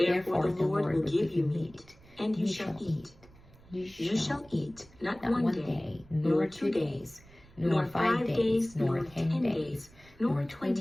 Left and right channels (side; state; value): right; noise; rumble, 25 dB below the sound